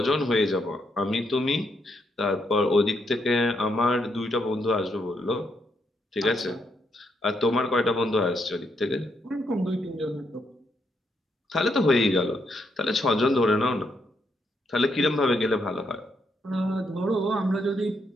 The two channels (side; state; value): both; normal; correlation 0.78